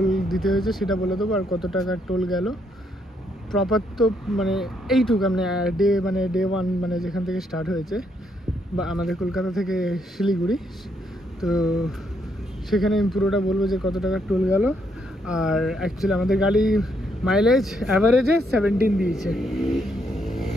দিতে হয়েছে সেটা বলে দেবো, আর কত টাকার টোল গেল প্রপার। তো মানে এইটুকু মানে ডে 1, মানে যেখান থেকে স্টার্ট হয়েছে বা আমাদের কলকাতা থেকে শিলিগুড়ি, তো সেখানে আমি পুরোটা বলবো যে কত টাকার টোল গেল। আর অ্যাকচুয়ালি আমাদের গাড়ি মাইলেজ অ্যাভারেজে 17 দিয়েছে,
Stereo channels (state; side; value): normal; both; correlation 0.74